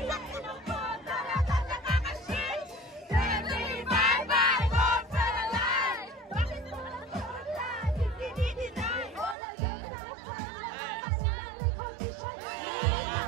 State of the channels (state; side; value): drops out; left; at 9.3 s